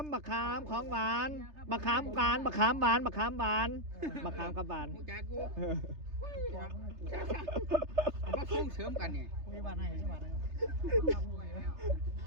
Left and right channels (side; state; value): left; late; 3.3 ms